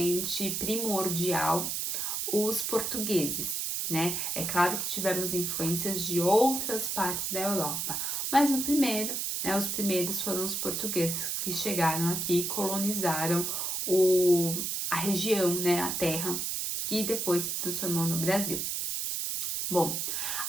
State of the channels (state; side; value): noise; right; hiss, 1 dB below the sound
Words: primordial, os portugueses, né? É claro que tivemos influências de outras partes da Europa, mas no primeiro, né, os primeiros foram os portugueses que chegaram aqui e colonizaram a região, né, a terra, que depois se transformou no Brasil. Bom,